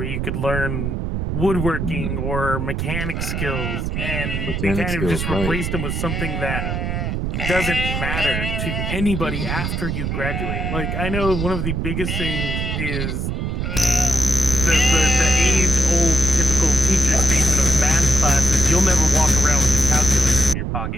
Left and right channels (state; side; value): noise; right; rumble, 2 dB below the sound